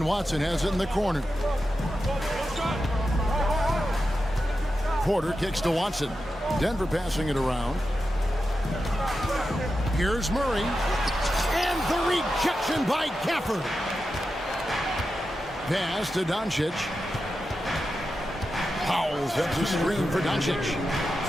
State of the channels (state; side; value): normal; both; correlation 0.90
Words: Watson has it in the corner. Porter kicks to Watson. Denver passing it around. Here's Murray. And the rejection by Gafford. Pass to Doncic. Powell sets a screen for Doncic.